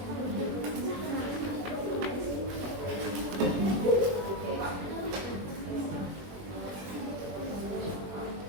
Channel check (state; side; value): late; left; 21 ms